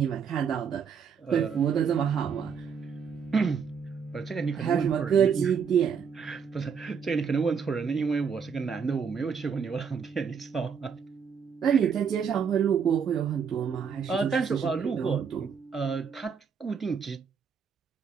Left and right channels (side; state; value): left; quieter; 6.6 dB